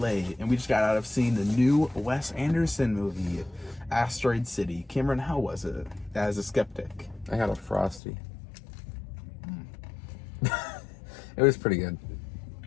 and we just got out of seeing the new Wes Anderson movie, Asteroid City. Cameron, how was it as a skeptic? I got a Frosty. It was pretty good.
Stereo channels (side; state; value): right; drops out; at 8.0 s